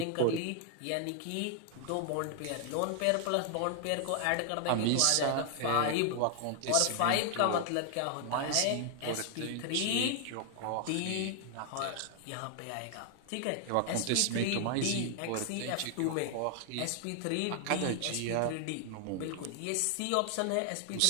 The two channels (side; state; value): both; different; correlation 0.00